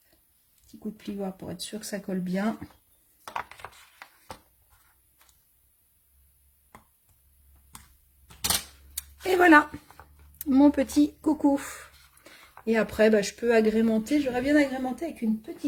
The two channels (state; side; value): identical; both; correlation 1.00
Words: petit coup de plioir pour être sûr que ça colle bien. Et voilà, mon petit coucou. Et après, bah, je peux agrémenter. J'aurais bien agrémenté avec une